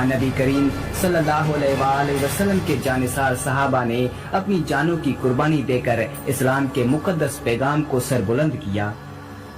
नबी करीम सल्लल्लाहु अलैहि वसल्लम के जानिसार सहाबा ने अपनी जानों की कुर्बानी देकर इस्लाम के मुकद्दस पैगाम को सरबुलंद किया।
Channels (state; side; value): identical; both; correlation 1.00